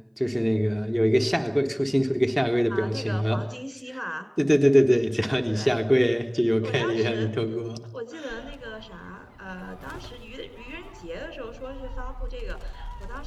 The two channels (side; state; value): both; identical; correlation 1.00